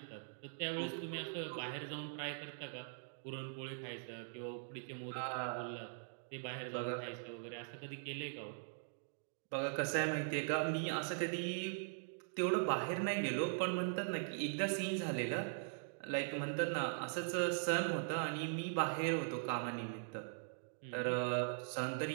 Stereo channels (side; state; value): left; silent; digital silence